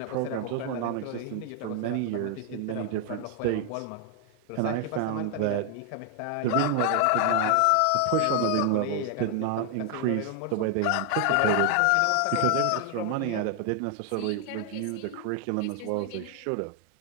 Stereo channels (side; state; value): both; different; correlation 0.00